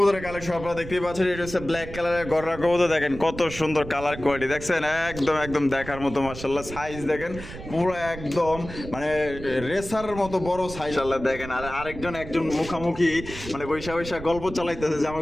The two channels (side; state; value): right; noise; rumble, 12 dB below the sound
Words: কালেকশন আপনারা দেখতেই পাচ্ছেন এটা হচ্ছে ব্ল্যাক কালারের গররা কবুতর দেখেন কত সুন্দর কালার কোয়ালিটি দেখছেন একদম দেখার মতো মাশাআল্লাহ সাইজ দেখেন পুরো একদম মানে রেসার মতো বড় সাইজ আল্লাহ দেখেন আর আরেকজন একজন মুখামুখি মানে বৈশা গল্প চালাইতেছে যে